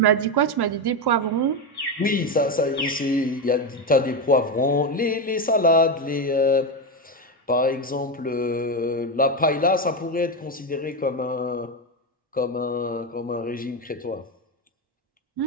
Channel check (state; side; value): normal; both; correlation 0.12